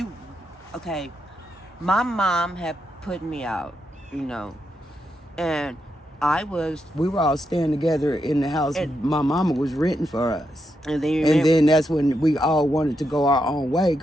okay, my mom had put me out, and I was, We were all staying together in the house And- my mama was renting for us. and then And then that's when we all wanted to go our own way,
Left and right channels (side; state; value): both; normal; correlation 0.83